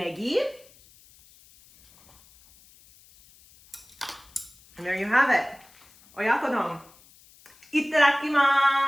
And there you have it. Oyakodon.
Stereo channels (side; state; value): left; noise; hiss, 27 dB below the sound